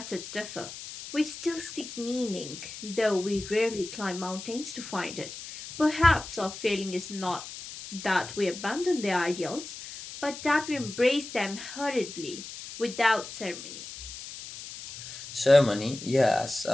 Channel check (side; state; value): left; noise; hiss, 11 dB below the sound